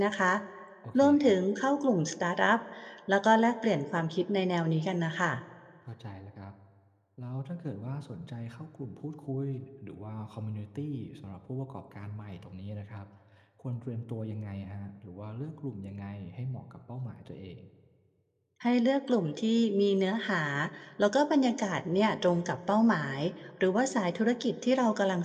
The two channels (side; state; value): both; identical; correlation 1.00